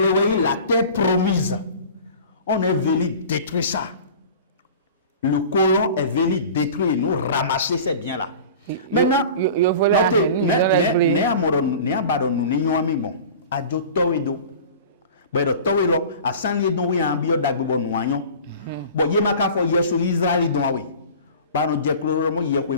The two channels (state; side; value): inverted; both; correlation -0.39